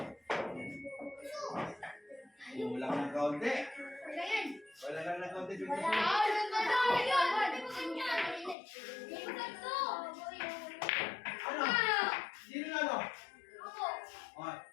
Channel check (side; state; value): right; drops out; at 8.6 s